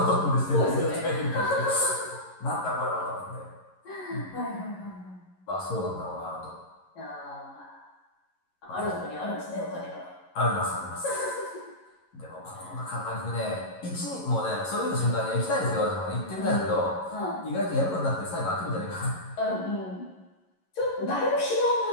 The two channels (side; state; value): right; late; 11 ms